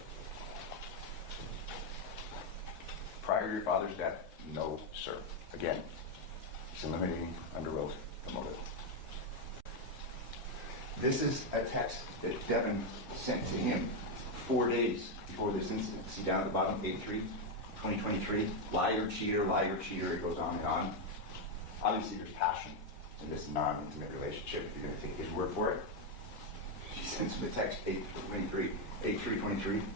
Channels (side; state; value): right; late; 2.0 ms